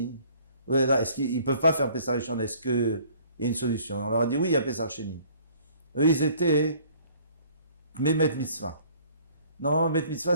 Est-ce qu'ils peuvent pas faire Pessah Rishon? Est-ce qu'il y a une solution? On leur a dit oui, il y a Pessah Sheni. Eux, ils étaient Memet Mitzvah. Normalement, Memet Mitzvah,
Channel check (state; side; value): inverted; both; correlation -0.56